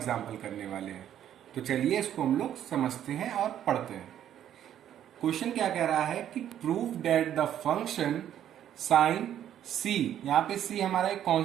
करने वाले हैं। तो चलिए इसको हम लोग समझते हैं और पढ़ते हैं। क्वेश्चन क्या कह रहा है कि prove that the function sine c, यहाँ पे सी हमारा एक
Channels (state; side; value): quieter; left; 10.7 dB